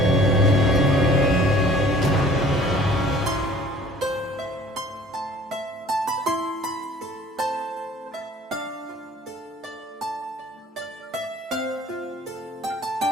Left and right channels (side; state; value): both; normal; correlation 0.52